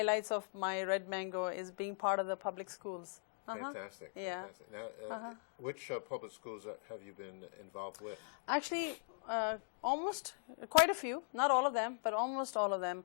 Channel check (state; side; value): silent; right; digital silence